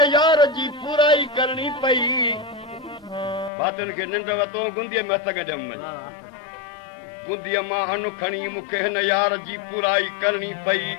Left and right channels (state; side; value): drops out; right; at 3.5 s